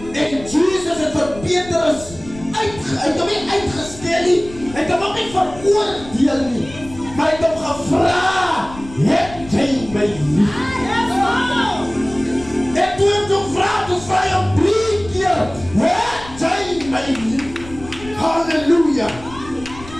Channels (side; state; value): left; noise; rumble, 16 dB below the sound